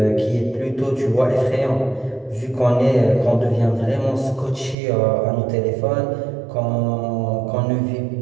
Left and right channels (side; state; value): left; drops out; at 4.8 s